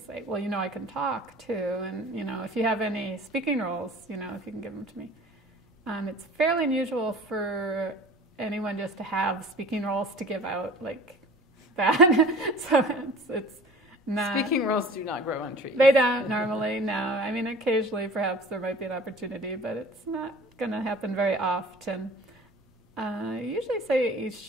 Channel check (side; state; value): both; normal; correlation 0.44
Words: well, I can talk too, and if you have any speaking roles, if you can give them to me. It's fairly unusual for anyone just to have speaking roles to give out like that. So it's not. Speaking roles do not grow on trees. They don't normally, no. I mean, occasionally perhaps there might be an opportunity, but it's not going to happen very often. I usually say you